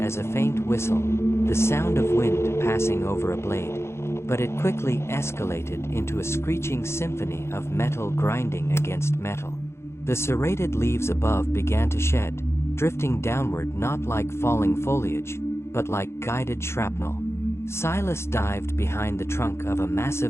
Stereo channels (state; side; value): late; right; 0.13 ms